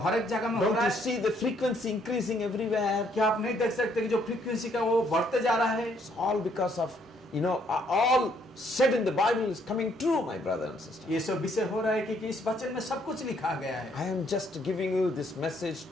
हर एक जगह में हो Don't रहा you है? see the frequency increasing everywhere? क्या आप नहीं देख सकते कि जो फ्रीक्वेंसी का वो बढ़ते जा रहा है? It's all because of, all said in the Bible is coming true, my brother and sister. ये सब विषय हो रहा है क्योंकि इस वचन में सब कुछ लिखा गया है। I am just giving you this message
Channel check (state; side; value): normal; both; correlation 0.68